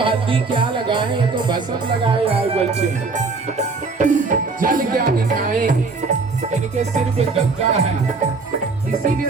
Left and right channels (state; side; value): quieter; left; 4.2 dB